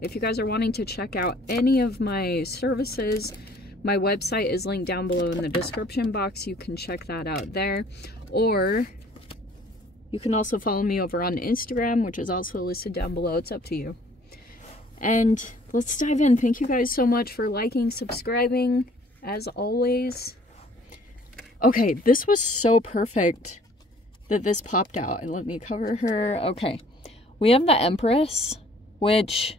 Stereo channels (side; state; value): both; normal; correlation 0.56